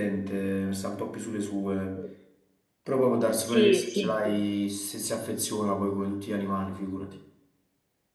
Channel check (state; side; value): identical; both; correlation 1.00